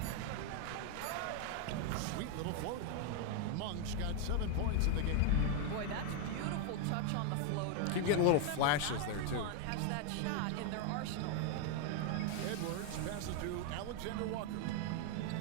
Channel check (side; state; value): both; different; correlation 0.00